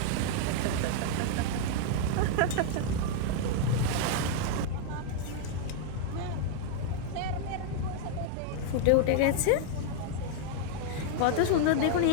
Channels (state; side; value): different; both; correlation 0.00